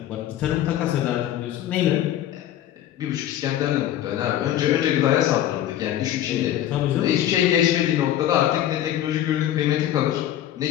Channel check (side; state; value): right; quieter; 12.0 dB